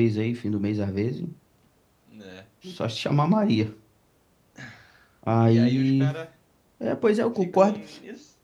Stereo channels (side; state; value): both; identical; correlation 1.00